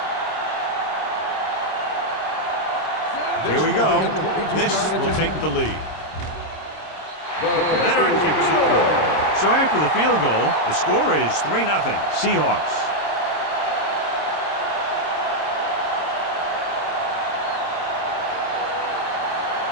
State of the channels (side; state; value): right; late; 26 ms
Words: Here we go. This will take the lead. Veteran kicks it through. So after the field goal, the score is 3-0 Seahawks.